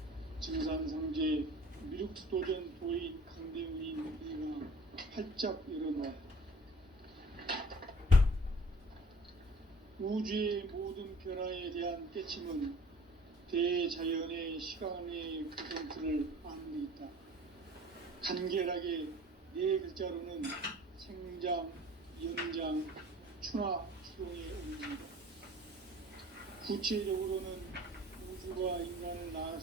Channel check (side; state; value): both; normal; correlation 0.48